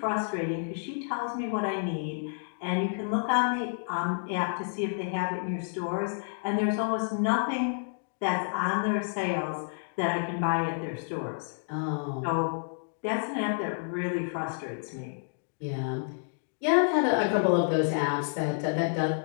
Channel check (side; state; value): right; silent; digital silence